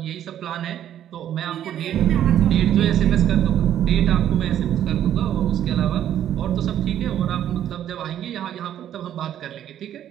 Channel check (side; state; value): left; quieter; 10.8 dB